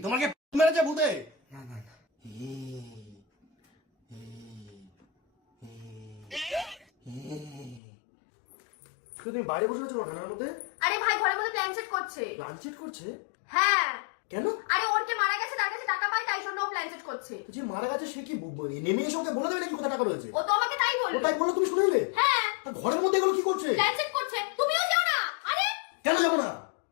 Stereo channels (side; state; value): right; drops out; at 7.8 s